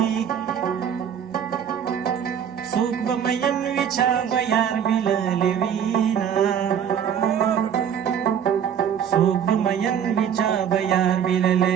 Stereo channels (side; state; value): left; quieter; 8.5 dB